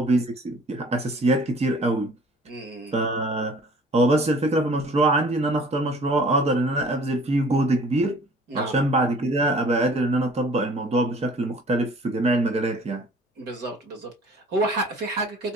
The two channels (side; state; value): both; normal; correlation 0.51